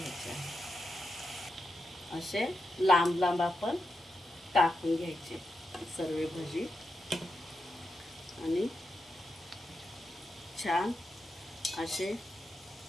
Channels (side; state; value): both; normal; correlation 0.87